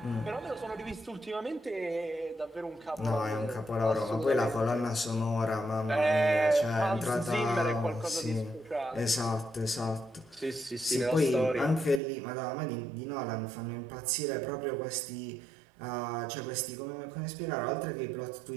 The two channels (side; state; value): left; drops out; at 12.0 s